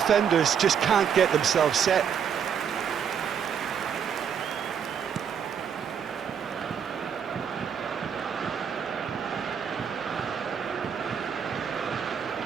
just can't get themselves set.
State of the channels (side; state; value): left; quieter; 7.6 dB